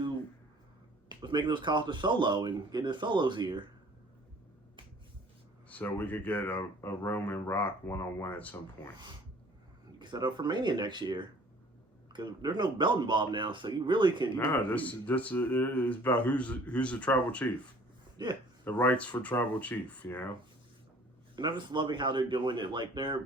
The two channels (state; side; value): normal; both; correlation 0.53